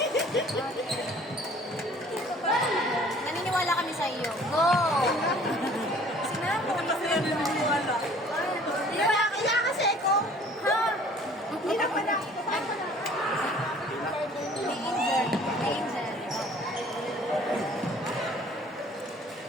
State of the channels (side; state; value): both; normal; correlation 0.52